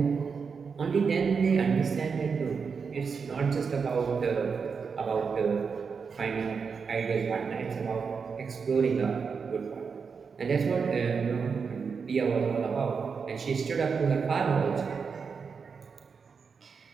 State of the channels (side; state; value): left; quieter; 5.6 dB